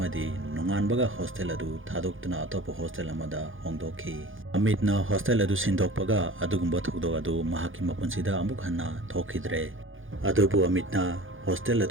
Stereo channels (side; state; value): left; late; 0.58 ms